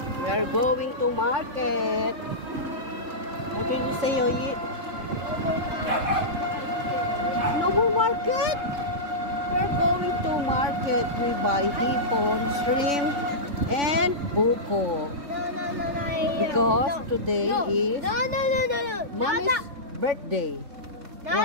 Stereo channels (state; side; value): late; left; 3.5 ms